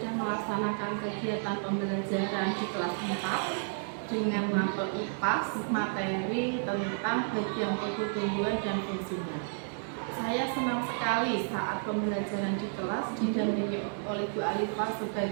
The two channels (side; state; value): left; silent; digital silence